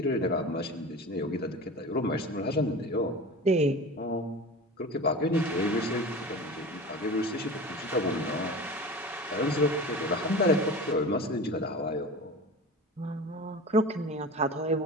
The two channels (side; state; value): both; normal; correlation 0.33